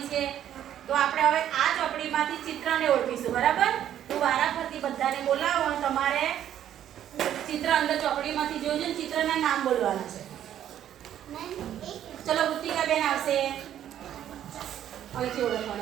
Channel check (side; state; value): left; quieter; 10.8 dB